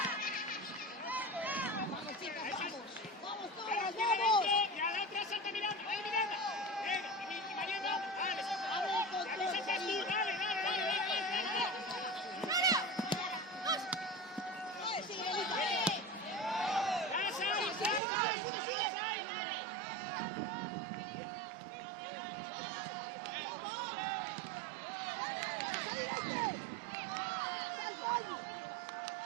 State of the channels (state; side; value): drops out; left; at 18.0 s